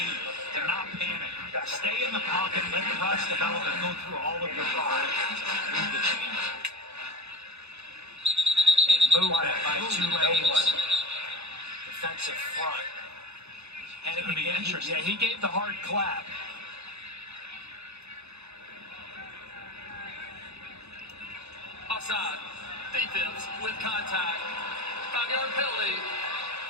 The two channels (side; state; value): left; late; 0.80 ms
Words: to not panic. Stay in the pocket, let the rush develop, and go through all of your progressions. Move the chains. And movement by Tulane's defensive front. Hennigan, be interesting. Yeah, he gave the hard clap. Offside. Defense with contact. 5-yard penalty.